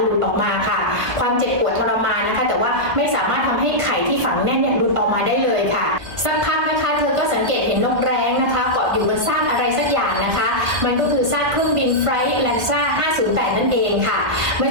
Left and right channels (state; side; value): late; left; 1.7 ms